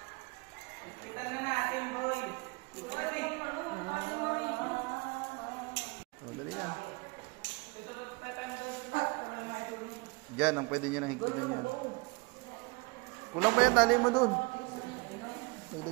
Oh, dali na. Diyan, ang pwede nyo nang higpitan yan. Kulang pa yan, tali mo doon.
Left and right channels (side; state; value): left; quieter; 27.6 dB